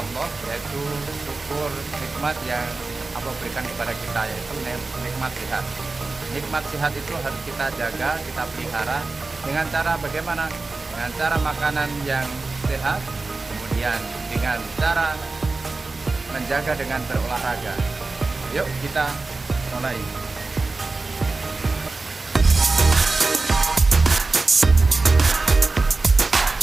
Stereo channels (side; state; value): left; quieter; 3.6 dB